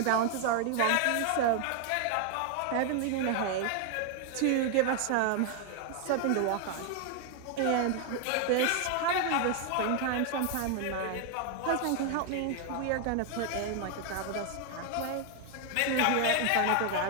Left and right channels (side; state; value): both; different; correlation 0.00